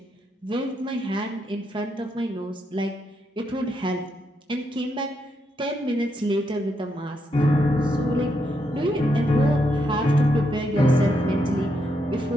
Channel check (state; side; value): normal; both; correlation 0.80